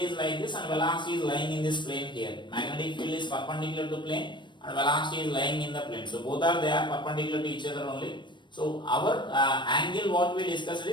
is like this and velocity is lying in this plane here. Magnetic field is perpendicular to plane and velocity is lying in the plane. So both are perpendicular to each other only. So our angle what we discussed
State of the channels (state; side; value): late; right; 0.22 ms